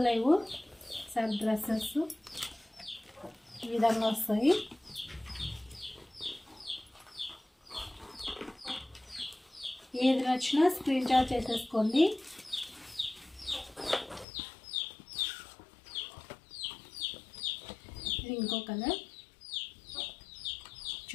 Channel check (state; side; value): drops out; right; at 14.2 s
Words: లేవు సార్. డ్రెస్సెస్ ఈ విధంగా వస్తాయి. ఏది నచ్చినా స్క్రీన్ షాట్ చేసేసుకోండి. ఇది ఇంకో కలర్